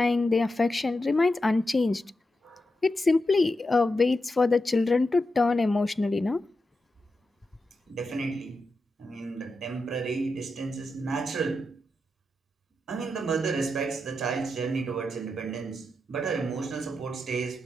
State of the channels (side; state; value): both; normal; correlation 0.88